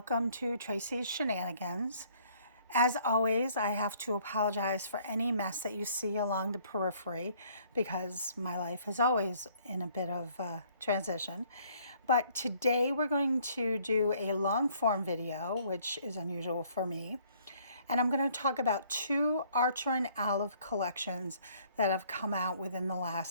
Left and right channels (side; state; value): both; inverted; correlation -0.61